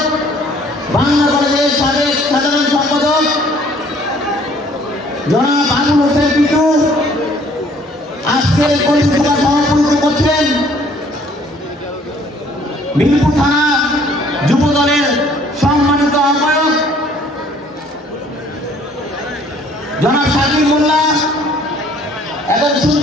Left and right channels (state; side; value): normal; both; correlation 0.58